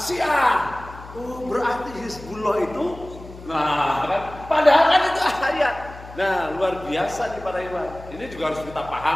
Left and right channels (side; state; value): left; noise; hum, 16 dB below the sound